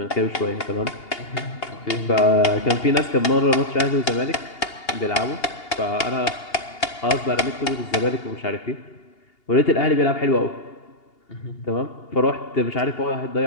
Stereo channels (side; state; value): right; late; 2.8 ms